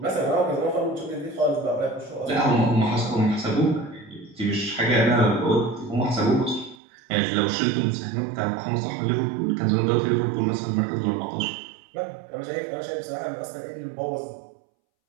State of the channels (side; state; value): left; drops out; at 6.8 s